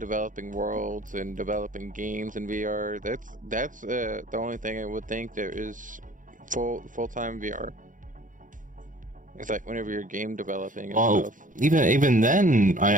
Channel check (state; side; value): late; left; 0.38 ms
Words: worlds and developing games in VR, that's the only thing I would think there is full-time VR. It's like whenever you're game developing and stuff. Even then,